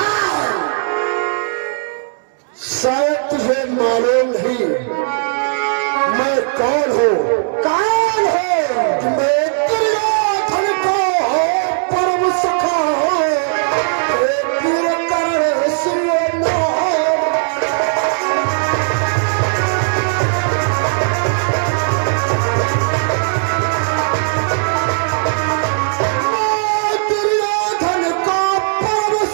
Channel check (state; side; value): silent; left; digital silence